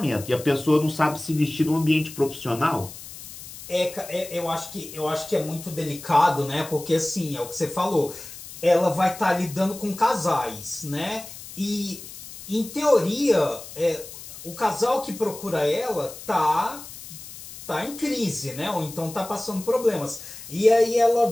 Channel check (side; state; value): left; noise; hiss, 14 dB below the sound